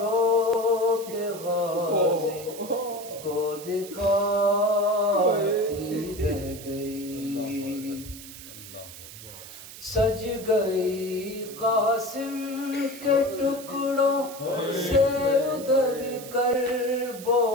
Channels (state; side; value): noise; right; hiss, 15 dB below the sound